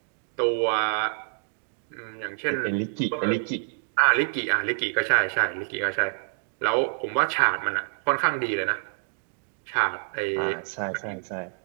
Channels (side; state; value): left; silent; 60 dB below the other